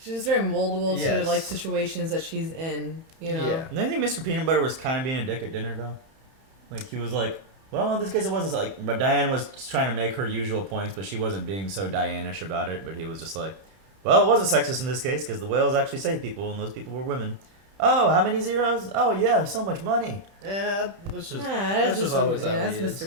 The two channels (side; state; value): left; late; 31 ms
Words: just very moldable to Yes. like situations that she's in. You know. Yeah. Do you think Mr. Peanut Butter was kind of being a dick at dinner though? Like he was like, well, in this case it wasn't like, but Diane was just trying to make her usual points, but she wasn't being so Diane-ish about it. But he was just like, well, it wasn't sexist in this case because the whales actually saved people, and those people were women. Oh, how many zeros? Oh yeah, so much money. Yeah, that's just that's just always how that's he is.